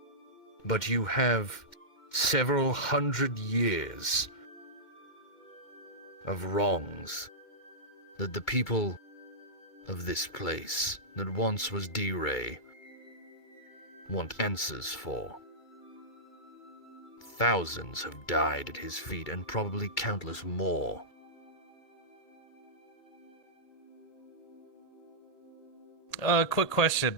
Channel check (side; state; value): right; late; 2.3 ms